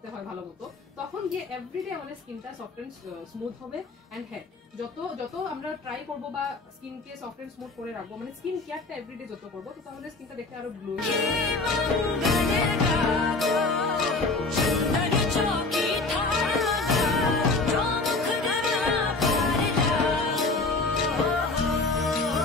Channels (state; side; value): quieter; right; 3.5 dB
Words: হয় ভালো মতো, তখন গিয়ে এভরিডে আমাদের স্কিনটা সফট এন্ড স্মুথ হবে। এন্ড হ্যাঁ, যত আমরা ট্রাই করবো বা স্কিনকে সফট এন্ড স্মুথ করে রাখবো, মানে স্কিন কেয়ারটা এভরিডে যত করবো, তো তাহলে স্কিনটা দেখতে আরো গ্লো।